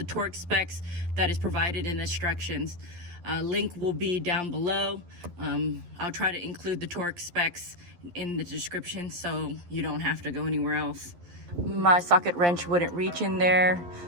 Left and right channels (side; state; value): left; late; 11 ms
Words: torque specs that is provided in the instructions. Link will be down below. I'll try to include the torque specs in the description so you don't have to go anywhere else. My socket wrench wouldn't reach in there,